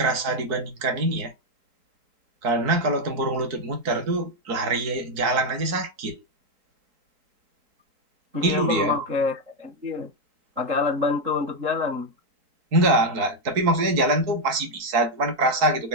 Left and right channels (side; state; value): left; late; 4.6 ms